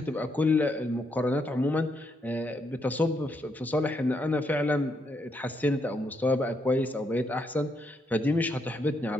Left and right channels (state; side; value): normal; both; correlation 0.77